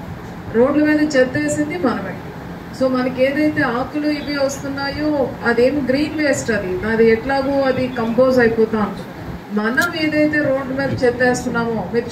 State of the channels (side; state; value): both; identical; correlation 1.00